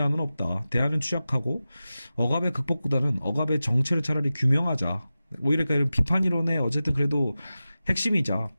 없다. 대안은 취약하고 억압의 극복보다는 억압의 정체를 차라리 규명하자. 오히려 그러니까 비판 이론의 어쨌든 그래도 핵심이자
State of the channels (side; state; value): both; inverted; correlation -0.94